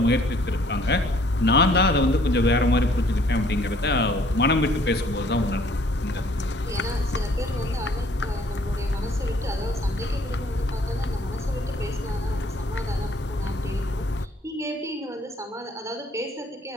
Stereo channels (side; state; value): both; normal; correlation 0.59